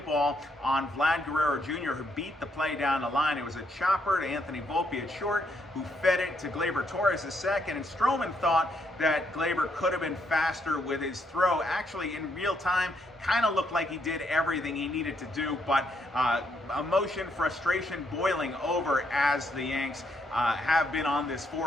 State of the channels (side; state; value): both; normal; correlation 0.75